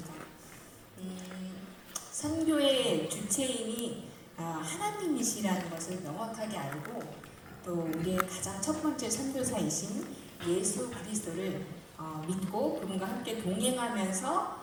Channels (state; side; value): identical; both; correlation 1.00